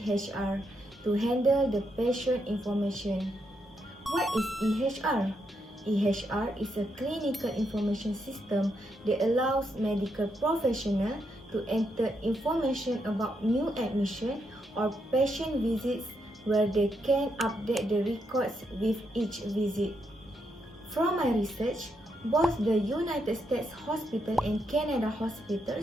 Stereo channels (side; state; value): both; normal; correlation 0.80